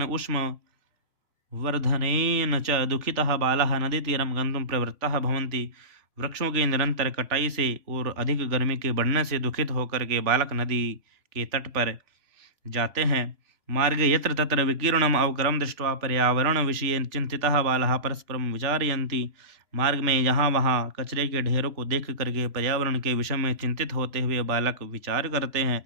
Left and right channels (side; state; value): left; late; 3.2 ms